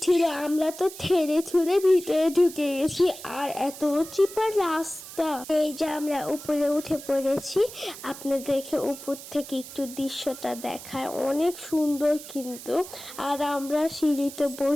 ছিল। আমরা তো ঠেলে ঠুলে ভিতরে ঢুকে গেছি, আর এত চিপা রাস্তা। এই যে আমরা উপরে উঠে পড়েছি। আপনাদেরকে উপর থেকে একটু দৃশ্যটা দেখায়, অনেক সুন্দর কিন্তু। আর আমরা সিঁড়িতে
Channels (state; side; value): noise; right; hiss, 14 dB below the sound